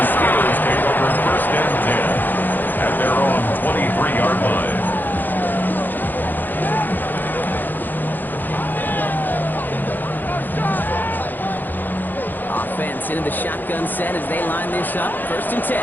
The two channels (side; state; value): right; late; 0.088 ms